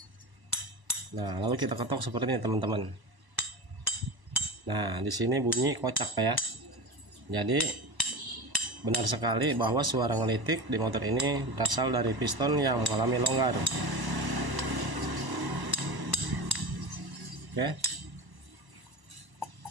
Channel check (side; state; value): left; late; 1.0 ms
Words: Nah, lalu kita ketok seperti ini teman-teman. Nah, di sini bunyi kocak Pak ya. Jadi benar sekali bahwa suara ngelitik di motor ini berasal dari piston yang mengalami longgar. Oke.